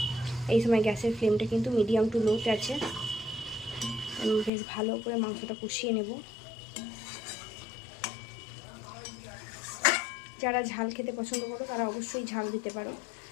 এই সময় গ্যাসের ফ্লেমটা কিন্তু মিডিয়াম টু লোতে আছে। আমি বেশ ভালো করে মাংসটা কষিয়ে নেব। যারা ঝাল খেতে পছন্দ করো তারা অবশ্যই ঝাল দিতে পারো।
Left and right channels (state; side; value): drops out; right; at 4.5 s